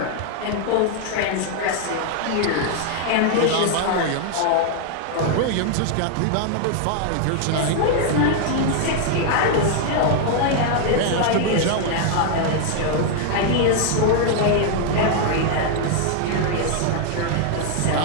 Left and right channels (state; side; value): different; both; correlation 0.00